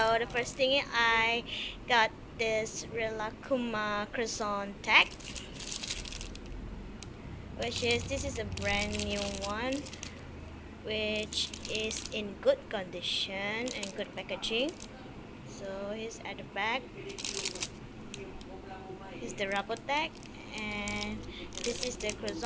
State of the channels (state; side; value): identical; both; correlation 1.00